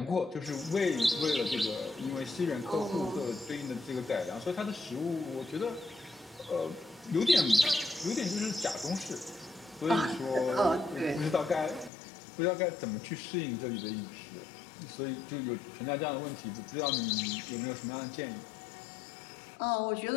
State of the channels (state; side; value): drops out; right; at 11.9 s